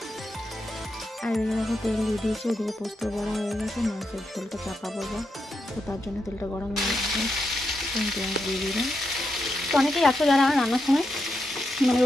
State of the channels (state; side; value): normal; both; correlation 0.84